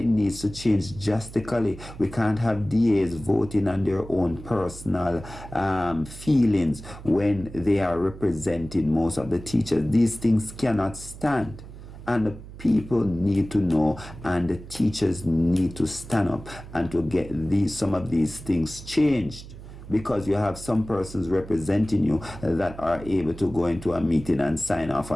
needs to change drastically. We can't have DAs voting on their own personal feelings when they are representing most of the teachers. These things cannot stand. And the people need to know, and the teachers need to stand up and to get some of these things changed. Because you have some persons representing you that are able to go into a meeting and sign off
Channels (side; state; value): right; noise; hum, 15 dB below the sound